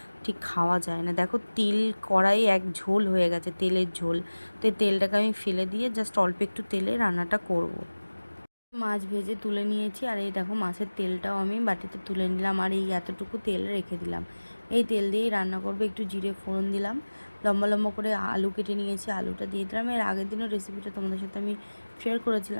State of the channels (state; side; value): inverted; both; correlation -1.00